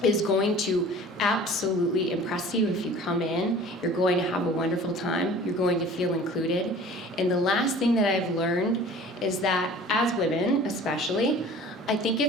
is going to absolutely impress you if you come in. You're going to have a wonderful time. You're going to feel included. And the last thing that I've learned is that as women, especially, I think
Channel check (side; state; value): both; normal; correlation 0.45